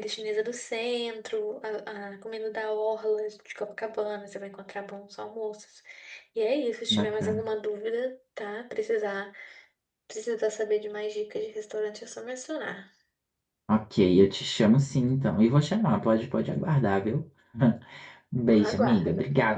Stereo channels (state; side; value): identical; both; correlation 1.00